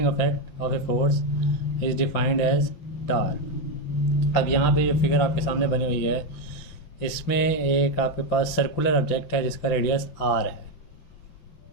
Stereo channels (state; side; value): late; right; 5.9 ms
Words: effect of a force is defined as torque. अब यहाँ पे ये फिगर आपके सामने बनी हुई है, इसमें एक आपके पास सर्कुलर ऑब्जेक्ट है जिसका रेडियस आर है,